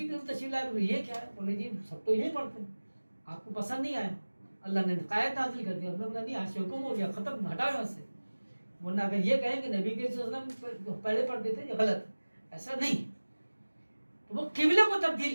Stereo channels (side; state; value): both; inverted; correlation -1.00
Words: کی تشریف لائے بولے یہ کیا ہے, بولے جی سب تو یہی پڑھتے ہیں, آپ کو پسند نہیں آیا, اللہ نے قائد نازل کر دیا. اللہ نہیں, آج سے حکم ہو گیا, ختم, ہٹا یہاں سے. ورنہ اگر یہ کہیں کہ نبی کے وسلم پہلے پڑھتے تھے, یہ غلط, ایسا نہیں. تو وہ قبلے کو تبدیل